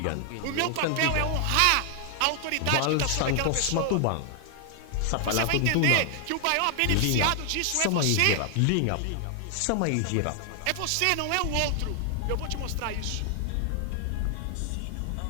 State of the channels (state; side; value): different; both; correlation 0.00